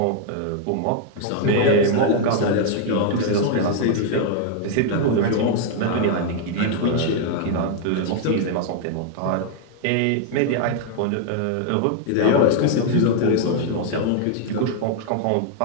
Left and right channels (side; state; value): both; different; correlation 0.00